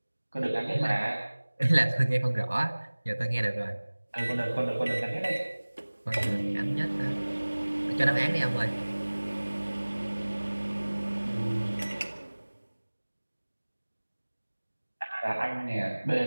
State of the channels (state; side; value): inverted; both; correlation -1.00